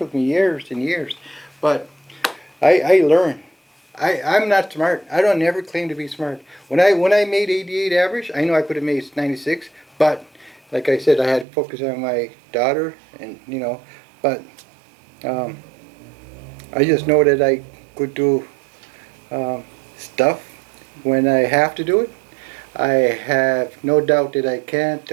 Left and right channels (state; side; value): drops out; left; at 11.5 s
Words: me years and years, but I learned. I'm not smart. I don't ever claim to be smart. When I made 88 average, I know I could have made 96, but like I said, I had to focus on my daughter, and but I just know that I could do stuff when I have to do it. I have no doubt that I can't